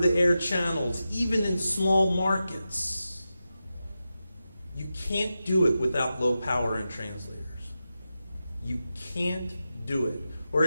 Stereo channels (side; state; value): both; inverted; correlation -0.91